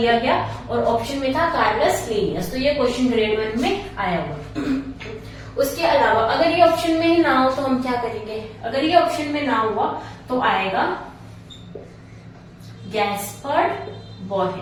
गया, और ऑप्शन में था कार्लस लीनियस। तो ये क्वेश्चन ग्रेड 1 में आया हुआ। उसके अलावा अगर ये ऑप्शन में ही ना हो तो हम क्या करेंगे, अगर ये ऑप्शन में ना हुआ तो आएगा गैस्पर्ड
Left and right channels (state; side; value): identical; both; correlation 1.00